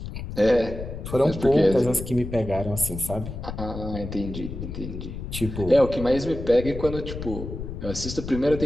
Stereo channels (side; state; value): left; noise; rumble, 8 dB below the sound